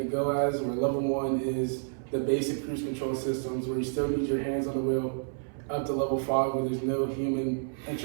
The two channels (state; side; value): silent; left; 58 dB below the other